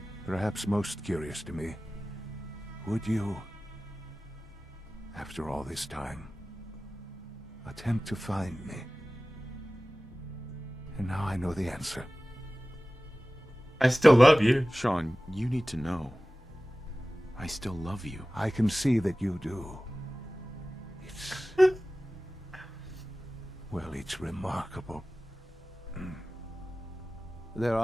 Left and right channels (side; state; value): both; normal; correlation 0.97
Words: Perhaps most curious to me, would you, after all this time, attempt to find me? And now I know the answer. I still love you. Sean, you need to know. I still love you. I can see that you do. It's... well, it's remarkable. There